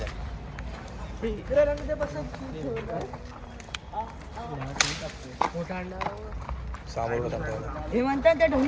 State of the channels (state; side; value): identical; both; correlation 1.00